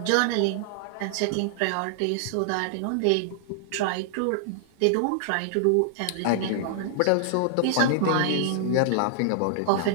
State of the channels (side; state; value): both; different; correlation -0.01